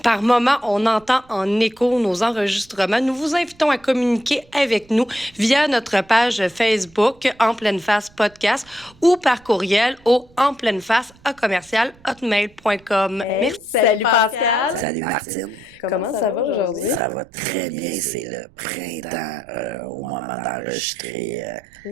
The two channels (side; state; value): right; noise; rumble, 28 dB below the sound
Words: par moment on entend en écho nos enregistrements, nous vous invitons à communiquer avec nous via notre page Facebook En Pleine Face Podcast ou par courriel au enpleineface@hotmail.com. Hey, Merci. Salut Pascal. Salut Martine. Comment ça va aujourd'hui? Ça va très bien, c'est le printemps au moment d'enregistrer